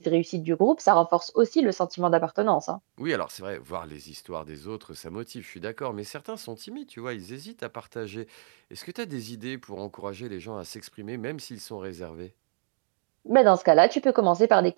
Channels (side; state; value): left; silent; digital silence